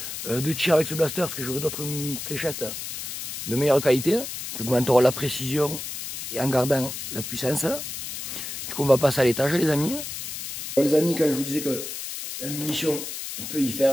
de tir avec ce blaster, parce que j'aurai d'autres fléchettes de meilleure qualité, qui augmenteront la précision et en gardant la puissance. Du coup on va passer à l'étage les amis. Alors, les amis, quand je vous disais que la munition on peut y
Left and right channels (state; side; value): noise; left; hiss, 7 dB below the sound